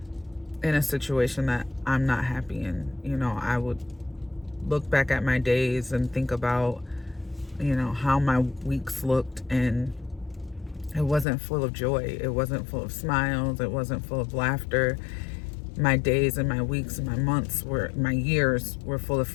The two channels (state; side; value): drops out; right; at 11.2 s